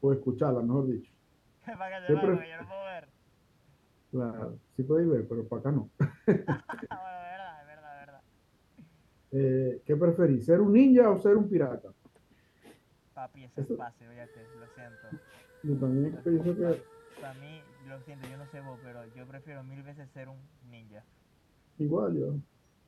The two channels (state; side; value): identical; both; correlation 1.00